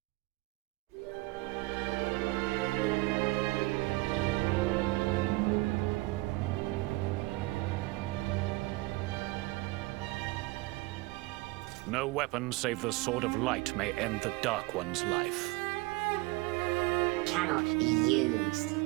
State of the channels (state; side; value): quieter; left; 22.1 dB